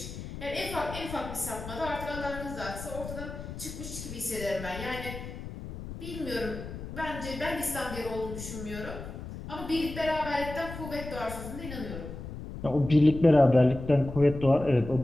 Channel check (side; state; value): left; noise; rumble, 10 dB below the sound